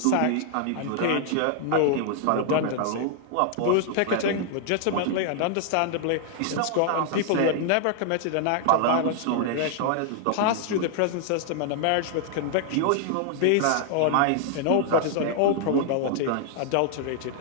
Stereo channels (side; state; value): both; different; correlation 0.00